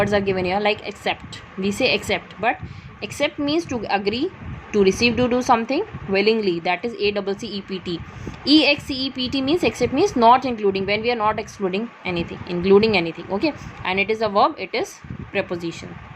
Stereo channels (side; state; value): both; identical; correlation 1.00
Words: are given here, like accept. We say accept, but accept means to agree, to receive, to do something willingly, that is ACCEPT. EXCEPT means accept means not including, when we are not excluding anything, including anything. Okay, and it is a verb, it is preposition.